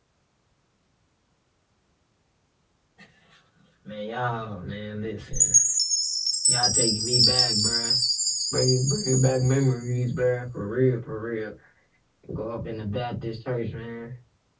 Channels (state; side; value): identical; both; correlation 1.00